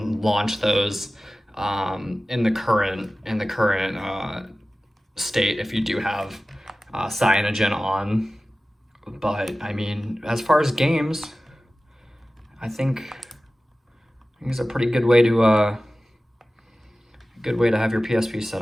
launch those in the current state if you do have Cyanogen on. But I mean, as far as games, I think it's a pretty good way to have your PSP set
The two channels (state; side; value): normal; both; correlation 0.96